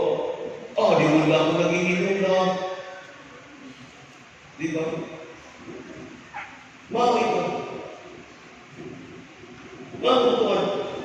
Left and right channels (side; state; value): both; identical; correlation 1.00